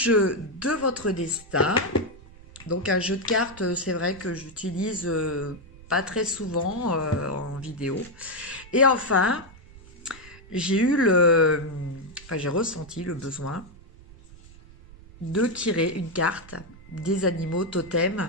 de votre destin. Donc un jeu de cartes, c'est vrai que j'utilise pas très souvent en vidéo. Et enfin, j'ai ressenti le besoin de tirer une carte des animaux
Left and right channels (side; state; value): right; noise; rumble, 21 dB below the sound